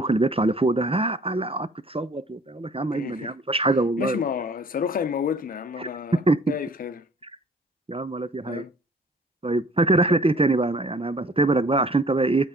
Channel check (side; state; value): both; normal; correlation 0.53